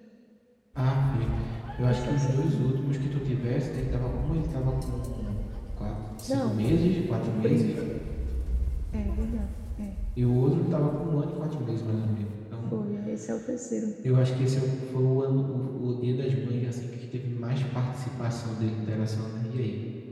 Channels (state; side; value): identical; both; correlation 1.00